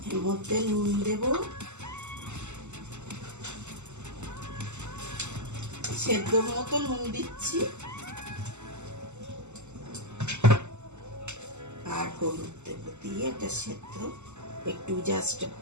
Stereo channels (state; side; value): late; left; 0.83 ms